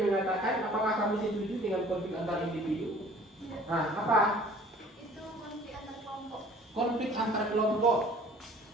mengatakan, apakah kamu setuju dengan konflik antar individu? Nah, apa? Itu konflik antar kelompok. Konflik antar kelompok.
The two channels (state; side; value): normal; both; correlation 0.51